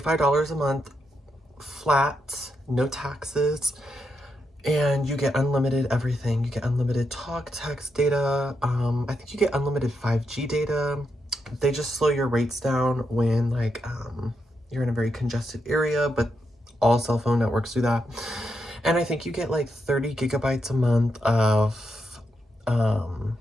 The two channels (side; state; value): both; normal; correlation 0.83